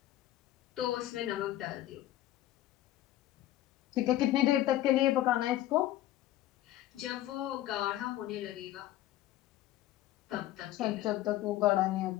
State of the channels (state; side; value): quieter; right; 14.3 dB